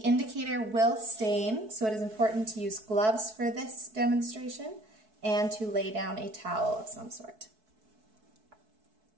will stain, so it is important to use gloves for this demonstration and to lay down a towel of some sort.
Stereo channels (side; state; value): left; late; 4.6 ms